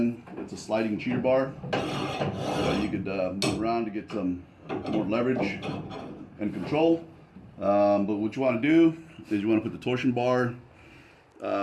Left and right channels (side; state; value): both; identical; correlation 1.00